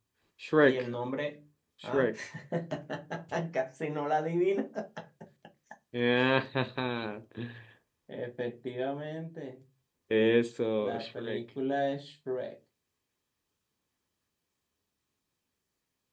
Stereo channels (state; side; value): identical; both; correlation 1.00